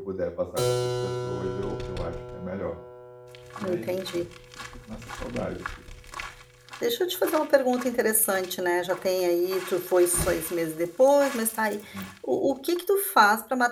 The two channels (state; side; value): identical; both; correlation 1.00